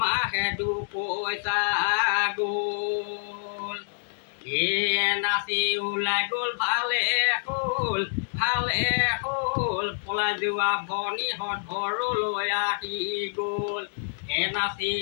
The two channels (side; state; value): right; silent; 60 dB below the other